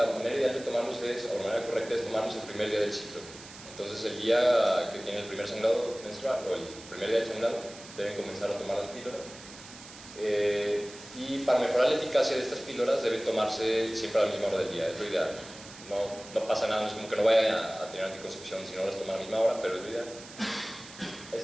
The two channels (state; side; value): noise; right; hiss, 17 dB below the sound